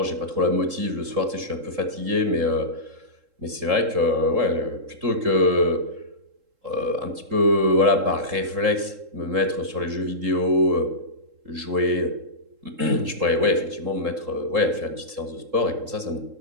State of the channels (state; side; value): late; left; 3.7 ms